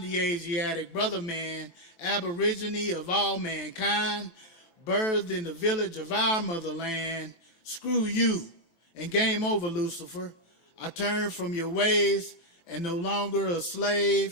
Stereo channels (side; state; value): right; late; 6.0 ms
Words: Asiatic brother man, aborigine of all mankind, birthed in the village of our motherland. Screw you, and game over, Lucifer. I turn from your ways and no longer a